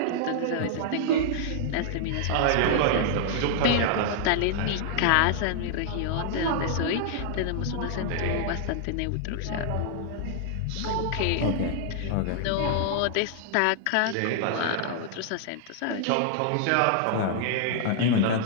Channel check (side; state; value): both; different; correlation -0.01